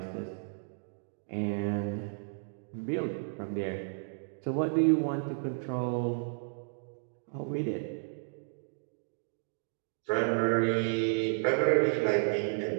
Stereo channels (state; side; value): silent; left; digital silence